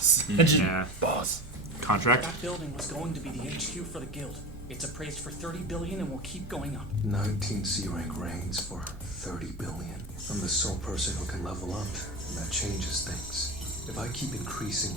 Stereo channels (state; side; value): normal; both; correlation 0.28